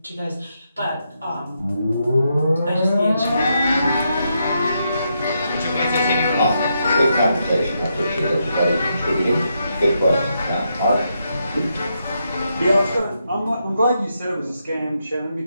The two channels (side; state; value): both; inverted; correlation -0.81